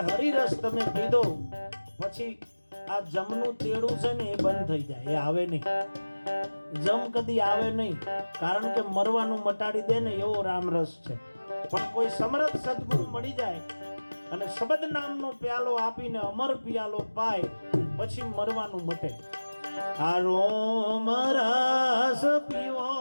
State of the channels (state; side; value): inverted; both; correlation -1.00